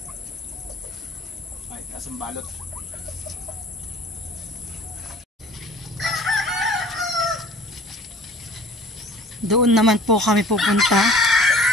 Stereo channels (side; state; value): both; normal; correlation 0.49